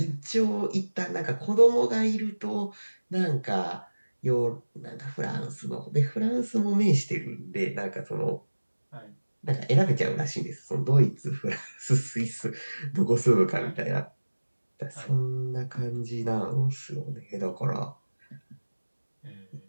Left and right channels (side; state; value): both; inverted; correlation -1.00